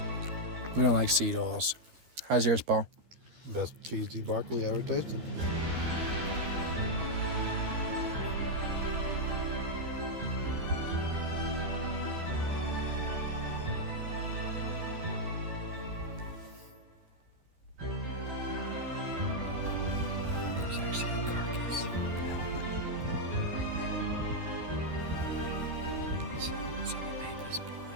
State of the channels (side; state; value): left; late; 13 ms